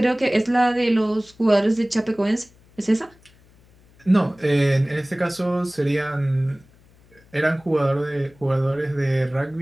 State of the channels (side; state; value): left; noise; hum, 29 dB below the sound